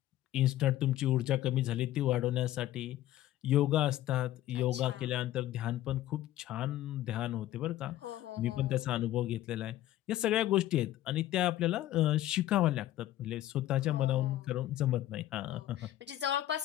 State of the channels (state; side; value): quieter; right; 13.8 dB